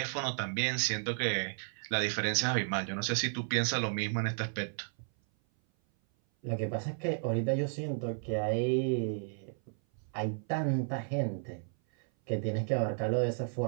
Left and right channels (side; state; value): left; silent; 56 dB below the other